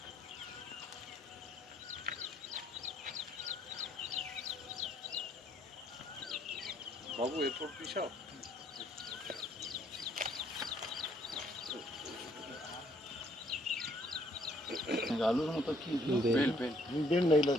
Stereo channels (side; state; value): both; normal; correlation 0.66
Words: বাবু এরপর পিসাও আলুর মতো কি বেল, বেল বেল নাই,